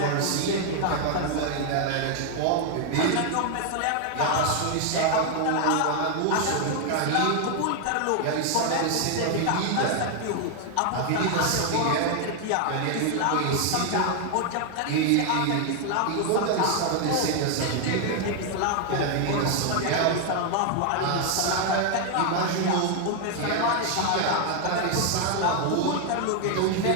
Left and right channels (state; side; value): different; both; correlation 0.00